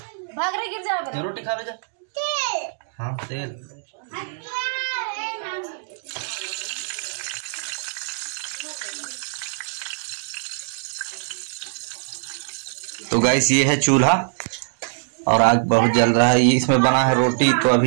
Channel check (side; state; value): left; silent; digital silence